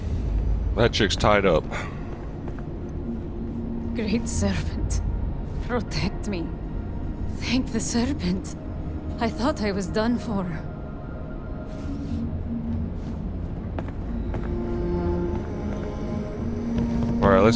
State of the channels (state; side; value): identical; both; correlation 1.00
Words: that chick's tied up. Great Serpent, protect me. Thank the Serpent. I thought I was done for. All right,